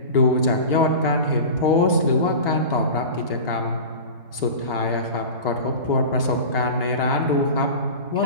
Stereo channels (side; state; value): both; inverted; correlation -0.32